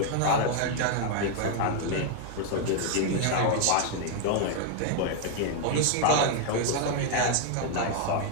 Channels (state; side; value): different; both; correlation 0.00